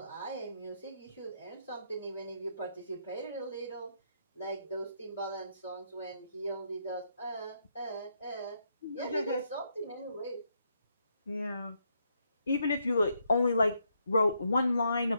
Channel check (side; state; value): both; inverted; correlation -0.77